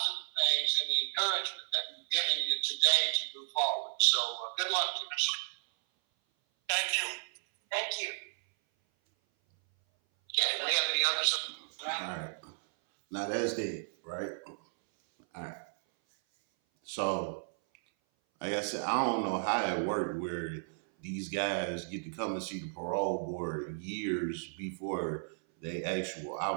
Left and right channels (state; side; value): silent; left; 55 dB below the other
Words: things and the encouragement that we've given you today to move forward. So good luck to you. Thank you. Thank you. Okay, do we have any others? All right. Now that's that, right? All right. So, like I said, I don't know how it worked where these guys get to come and see the parole board years before they actual